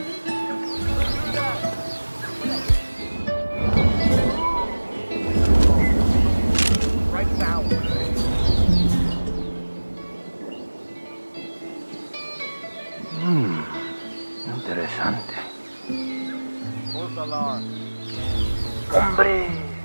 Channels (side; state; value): both; inverted; correlation -1.00